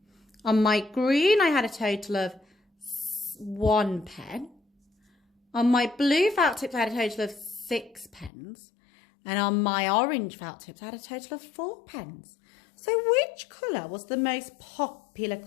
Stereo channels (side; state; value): right; drops out; at 8.3 s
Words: On my green, I had a total of 1 pen. On my blue felt tips, I had a total of 6 pens. And on my orange felt tips, I had a total of 4 pens. So which colour was the most popular